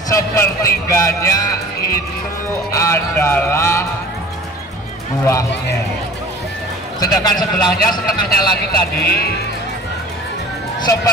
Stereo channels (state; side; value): normal; both; correlation 0.44